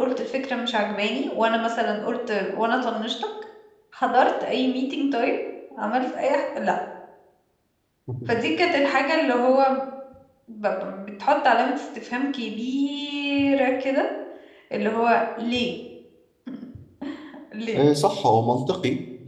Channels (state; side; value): identical; both; correlation 1.00